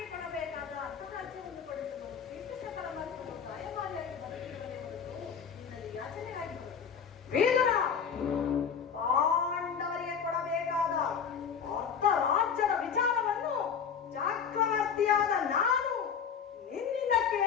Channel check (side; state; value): right; quieter; 7.1 dB